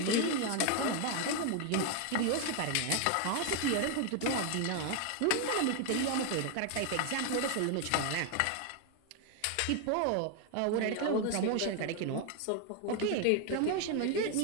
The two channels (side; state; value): both; different; correlation 0.01